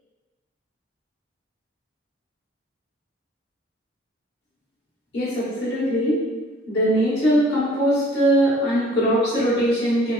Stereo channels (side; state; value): both; normal; correlation 0.53